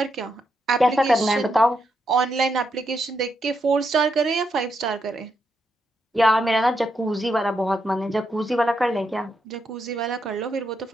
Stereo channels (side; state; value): both; normal; correlation 0.81